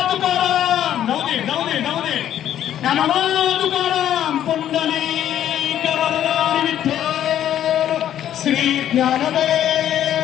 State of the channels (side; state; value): right; quieter; 11.0 dB